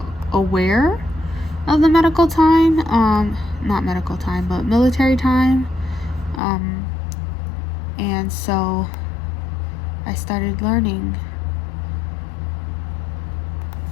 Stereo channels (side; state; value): right; drops out; at 6.4 s